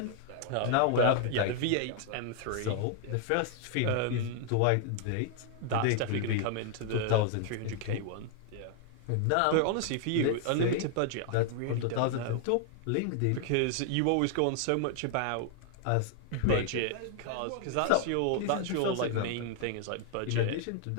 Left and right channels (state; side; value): different; both; correlation 0.00